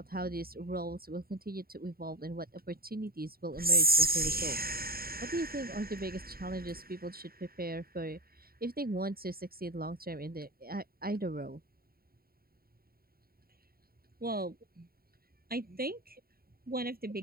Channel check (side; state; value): left; late; 0.43 ms